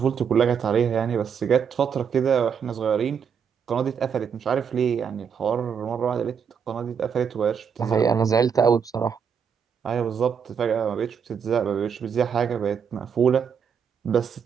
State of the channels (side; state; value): left; quieter; 7.1 dB